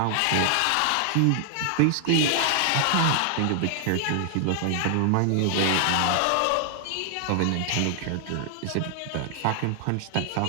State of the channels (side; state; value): both; different; correlation 0.00